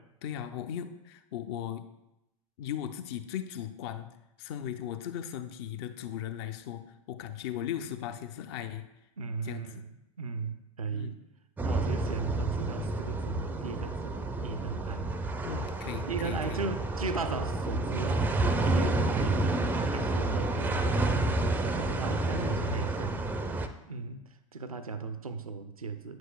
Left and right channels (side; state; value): both; normal; correlation 0.45